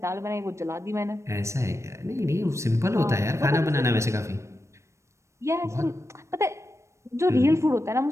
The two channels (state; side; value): late; left; 0.14 ms